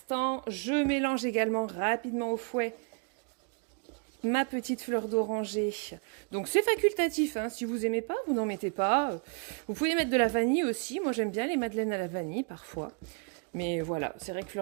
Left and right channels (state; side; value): quieter; left; 37.7 dB